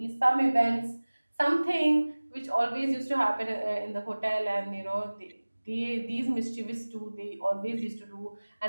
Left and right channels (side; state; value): both; inverted; correlation -1.00